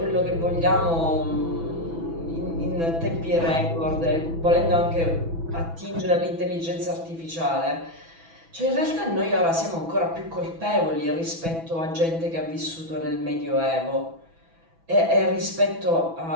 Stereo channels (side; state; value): left; late; 6.1 ms